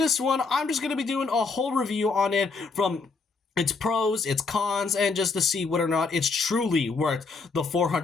one, I'm just going to be doing a whole review on it from its pros, its cons, and just to see whether or not it's truly worth the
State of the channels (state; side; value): quieter; right; 4.3 dB